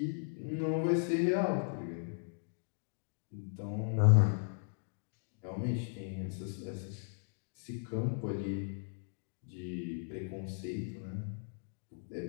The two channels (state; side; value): silent; right; digital silence